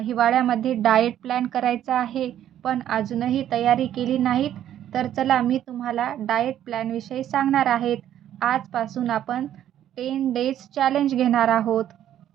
हिवाळ्यामध्ये डाएट प्लॅन करायचा आहे, पण अजूनही तयारी केली नाहीत. तर चला मी तुम्हाला डाएट प्लॅनविषयी सांगणार आहेत. आजपासून आपण 10 डेज चॅलेंज घेणार आहोत.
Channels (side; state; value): left; quieter; 11.2 dB